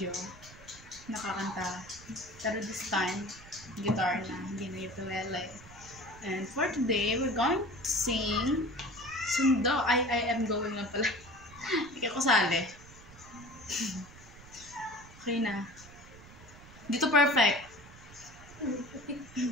nakakanta, pero this time guitar na, hindi na ukulele. And for today we're going to sing Sundo. I am going na pala. Hindi ako sali. Okay na, dito perfect.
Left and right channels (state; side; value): noise; right; rumble, 19 dB below the sound